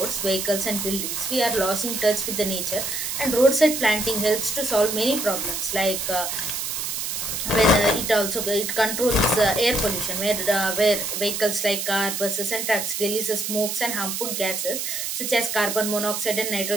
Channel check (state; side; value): noise; right; hiss, 3 dB below the sound